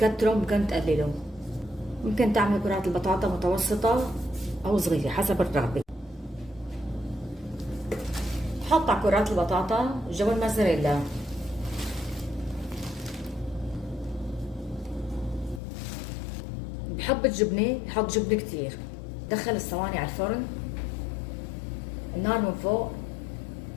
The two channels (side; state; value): right; drops out; at 15.6 s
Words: ممكن تقللوا. ممكن تعملوا كرات البطاطا متوسطة أو صغيرة حسب الرغبة. بحط على كرات البطاطا جبن موزاريلا. بحب الجبنة بحط جبنة كتير. دخل الصواني على الفرن، النار من فوق